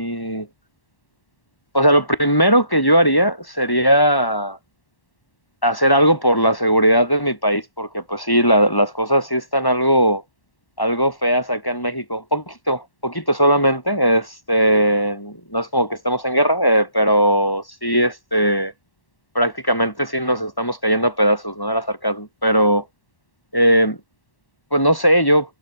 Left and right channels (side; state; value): right; late; 1.1 ms